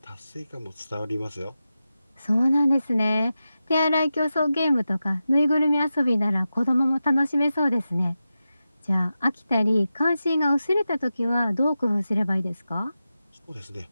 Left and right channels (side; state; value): both; inverted; correlation -0.92